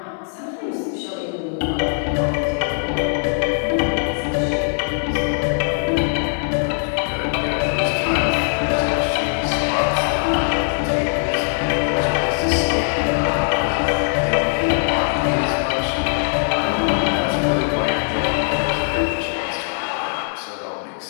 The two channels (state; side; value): silent; right; digital silence